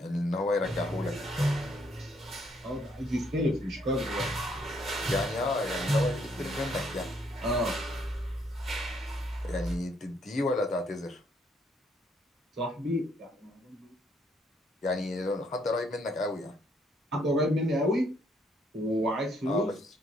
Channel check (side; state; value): both; normal; correlation 0.70